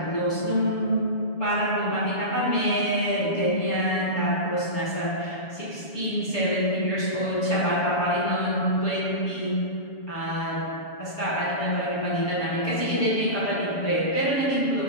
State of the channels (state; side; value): late; right; 7.0 ms